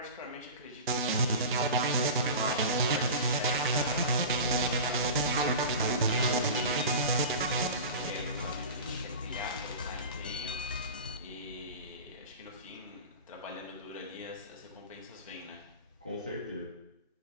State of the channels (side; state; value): both; inverted; correlation -0.32